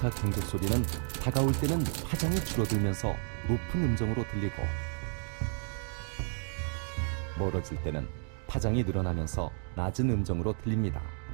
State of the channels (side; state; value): left; silent; 56 dB below the other